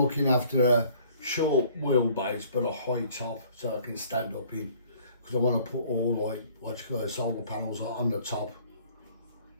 looking after a short wheelbase, but a high top, so I can stand up in. Because I want to put all, like, solar panels on the top,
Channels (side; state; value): both; inverted; correlation -0.56